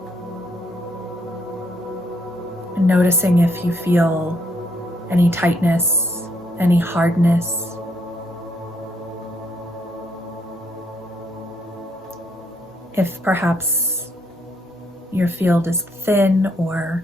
And noticing if you feel any tightness, any hardness. If perhaps your field is thin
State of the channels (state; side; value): normal; both; correlation 0.72